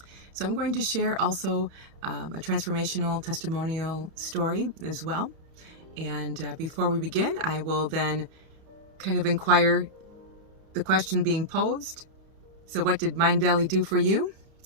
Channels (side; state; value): left; late; 31 ms